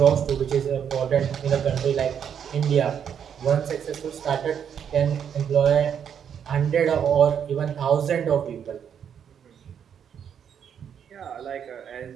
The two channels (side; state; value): left; quieter; 8.2 dB